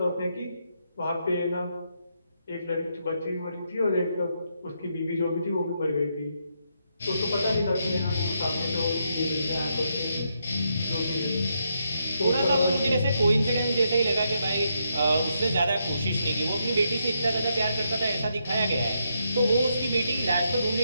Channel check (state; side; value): inverted; both; correlation -0.79